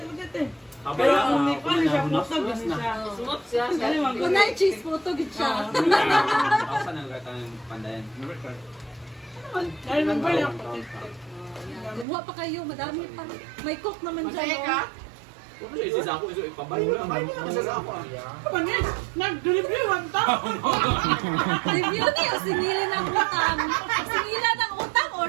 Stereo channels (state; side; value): drops out; left; at 12.1 s